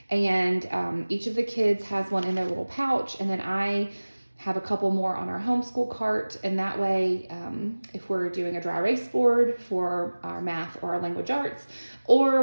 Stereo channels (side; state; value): both; inverted; correlation -1.00